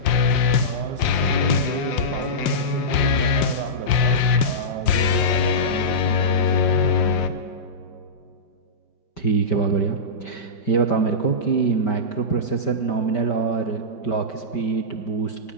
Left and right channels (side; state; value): right; late; 5.6 ms